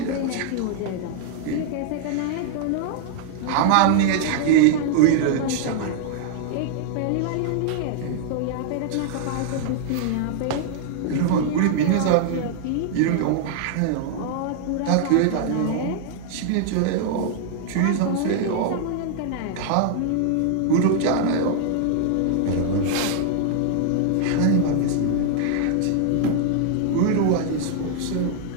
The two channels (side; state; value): both; different; correlation -0.01